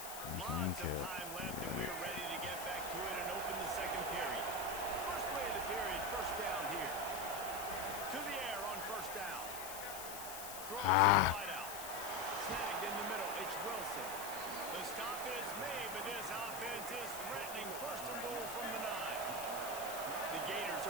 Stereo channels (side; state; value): left; noise; hiss, 9 dB below the sound